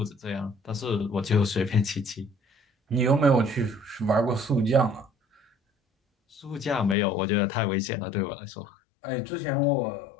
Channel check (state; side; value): drops out; right; at 7.0 s